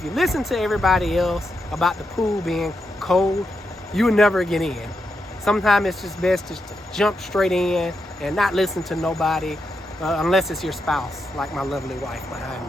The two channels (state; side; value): normal; both; correlation 0.84